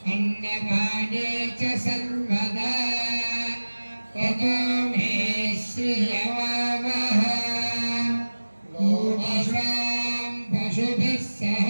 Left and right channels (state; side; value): inverted; both; correlation -1.00